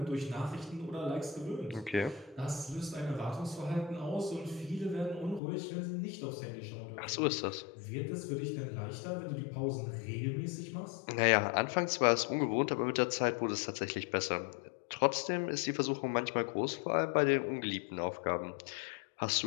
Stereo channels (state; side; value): drops out; right; at 5.4 s